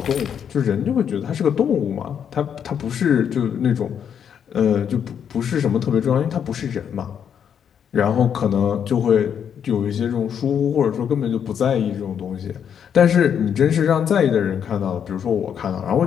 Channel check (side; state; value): right; quieter; 8.2 dB